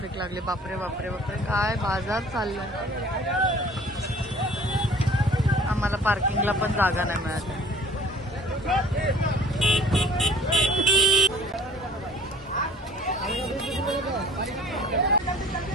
लागली. बापरे बापरे बापरे, काय बाजार चाललाय. आम्हाला पार्किंगला पण जागा नाही मिळाली.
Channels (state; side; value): normal; both; correlation 0.50